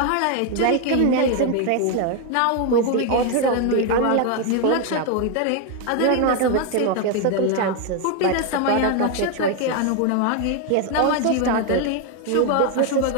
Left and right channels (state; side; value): different; both; correlation 0.01